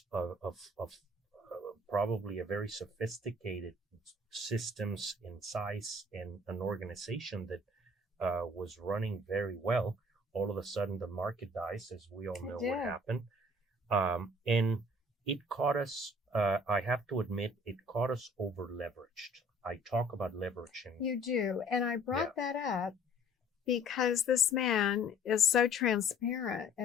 of probably a very sophisticated systems in size and an organization that was running very well. All of a sudden, the market dies, as we all know what happened. And it caught us, I have to admit, it caught us over leveraged. I talk about leveraging. You do. And I brought that up because this man is so transparent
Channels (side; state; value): both; normal; correlation 0.54